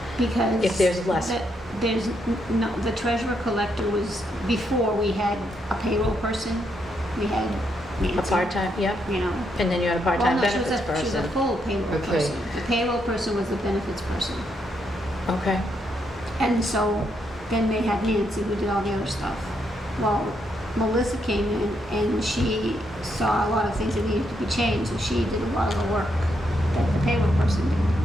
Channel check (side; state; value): both; normal; correlation 0.78